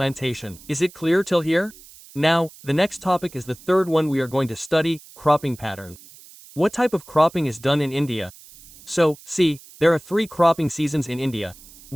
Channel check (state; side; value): noise; right; hiss, 21 dB below the sound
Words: Is it clear till here? Now, the next topic is the third one we are going to study, cropping pattern. What type of cropping is done in India? So, see, there are 3 cropping seasons in India.